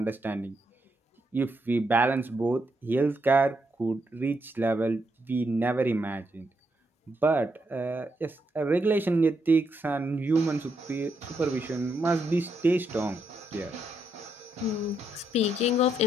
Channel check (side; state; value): both; normal; correlation 0.79